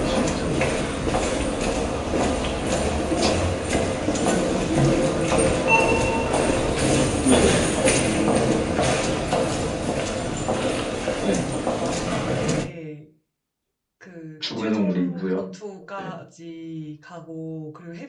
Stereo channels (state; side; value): identical; both; correlation 1.00